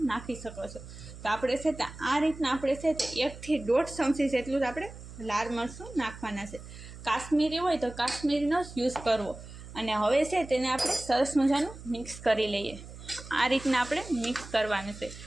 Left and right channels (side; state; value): right; noise; hum, 14 dB below the sound